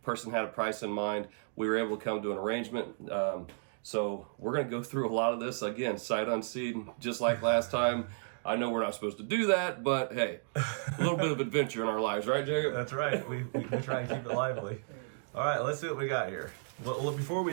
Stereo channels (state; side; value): silent; left; digital silence